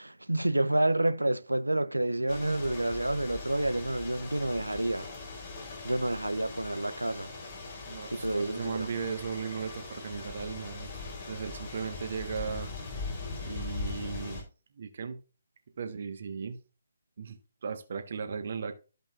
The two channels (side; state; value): both; inverted; correlation -0.91